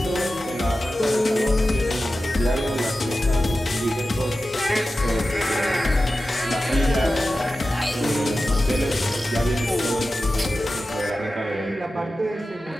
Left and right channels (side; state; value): both; normal; correlation 0.94